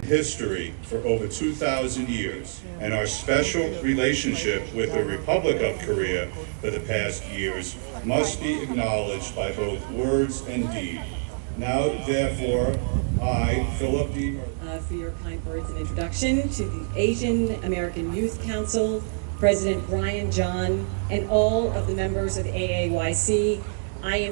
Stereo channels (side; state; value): left; silent; digital silence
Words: history for over 2,000 years, and our special relationship with the Republic of Korea for the past years must be acknowledged by both words and deed. Now, therefore, I, Philip D. For your kind words and introduction to the Asian American Youth Council, President Brian John, and all of the members of AAYC. I